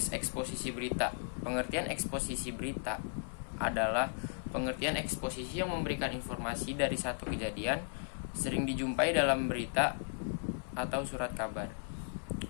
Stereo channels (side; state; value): right; silent; 54 dB below the other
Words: eksposisi berita. Pengertian eksposisi berita adalah pengertian eksposisi yang memberikan informasi dari satu kejadian, sering dijumpai dalam berita atau surat kabar.